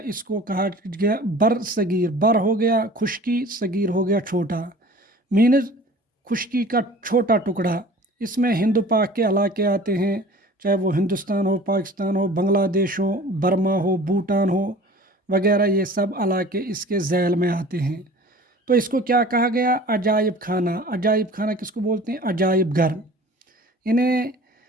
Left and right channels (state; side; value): normal; both; correlation 0.44